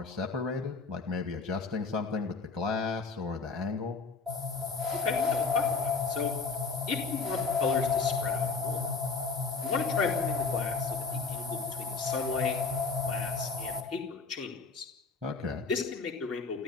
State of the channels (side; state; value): right; quieter; 4.5 dB